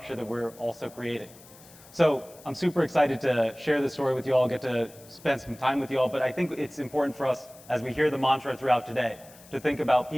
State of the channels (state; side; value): noise; left; hiss, 22 dB below the sound